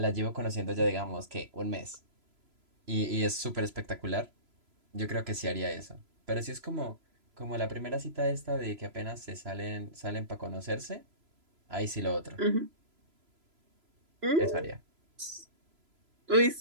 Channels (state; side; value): late; left; 3.0 ms